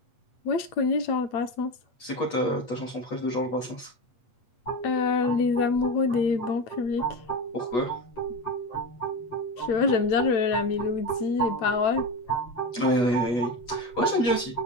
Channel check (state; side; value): late; right; 8.3 ms